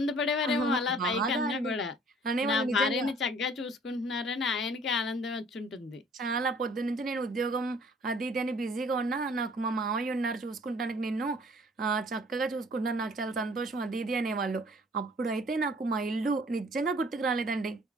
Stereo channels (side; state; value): both; normal; correlation 0.55